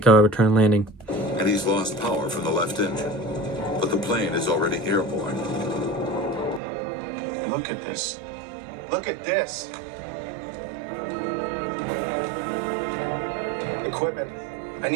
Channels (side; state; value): left; drops out; at 6.6 s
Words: landing. And he's lost power from the left engine. But the plane is already airborne. Look at this. Look at this. Equipment. I